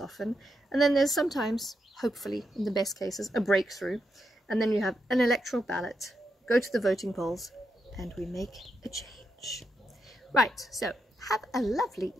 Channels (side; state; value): both; normal; correlation 0.84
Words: And then there's sometimes, hopefully, in the best cases, a breakthrough. And then you have an electoral ballot, go to the voting polls, and we make a change. Right, so have a lovely